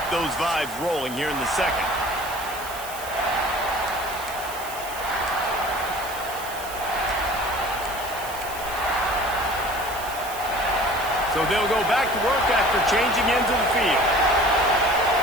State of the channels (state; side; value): noise; right; hiss, 12 dB below the sound